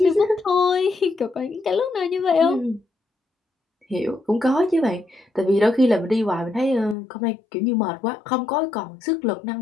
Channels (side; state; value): right; drops out; at 7.0 s